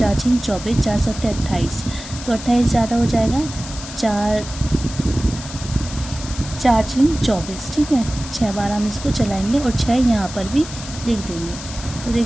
6 24, 4 7 28, तो 28 ज़्यादा हो जाएगा, 4 6 24। ठीक है, 6 बार हम इसको चलाएंगे और 6 यहाँ पर भी लिख देंगे। तो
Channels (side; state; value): left; noise; hiss, 12 dB below the sound